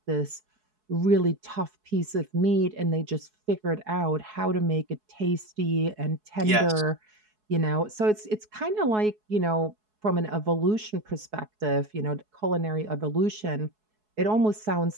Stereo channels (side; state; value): left; late; 4.7 ms